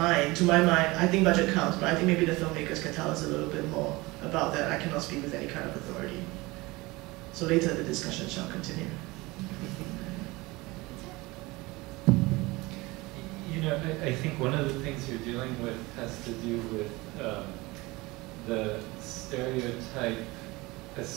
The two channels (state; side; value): quieter; left; 22.2 dB